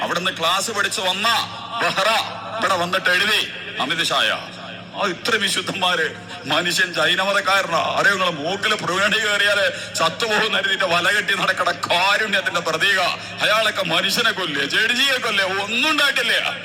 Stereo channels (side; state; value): both; identical; correlation 1.00